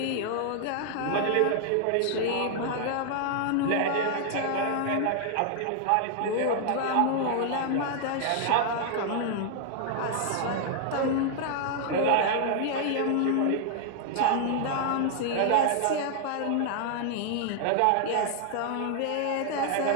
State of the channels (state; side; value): different; both; correlation 0.00